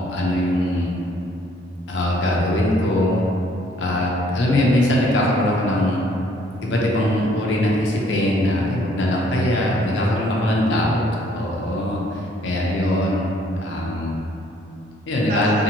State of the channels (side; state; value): both; normal; correlation 0.63